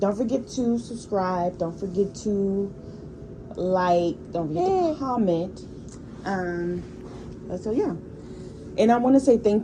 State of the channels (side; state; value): both; identical; correlation 1.00